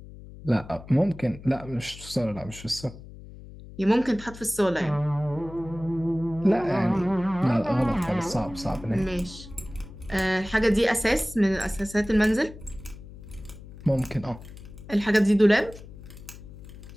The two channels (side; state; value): left; noise; hum, 16 dB below the sound